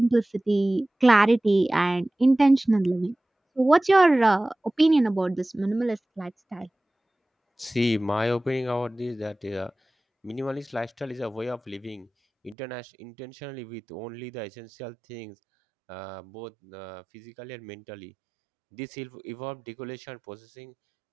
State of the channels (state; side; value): drops out; left; at 12.6 s